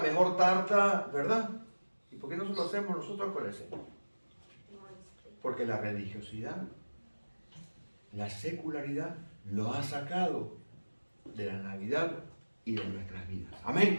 tarta, ¿verdad? ¿Y por qué no lo hacemos nosotros con el Señor? Porque la religiosidad, la secularidad, lo ha sacado de la Navidad y de nuestras vidas.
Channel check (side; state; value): both; inverted; correlation -1.00